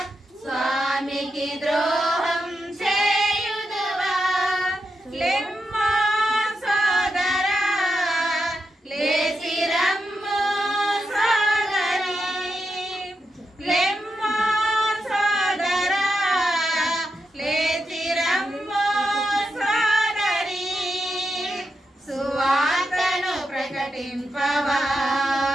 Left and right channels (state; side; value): normal; both; correlation 0.86